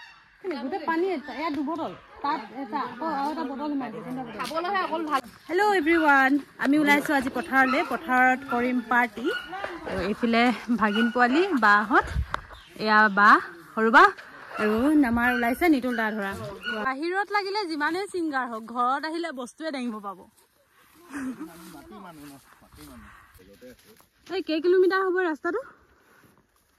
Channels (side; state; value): both; identical; correlation 1.00